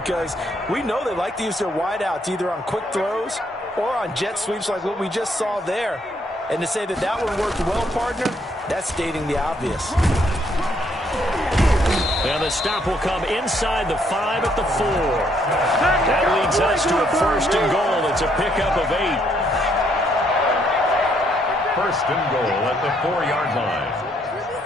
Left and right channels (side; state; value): both; normal; correlation 0.71